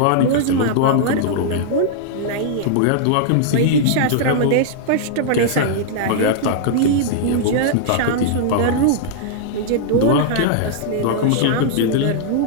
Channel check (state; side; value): different; both; correlation -0.01